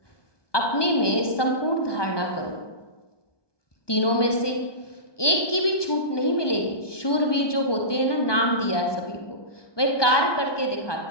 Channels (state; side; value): late; right; 1.2 ms